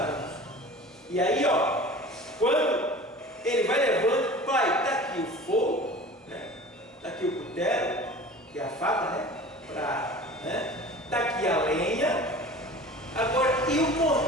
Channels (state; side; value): normal; both; correlation 0.40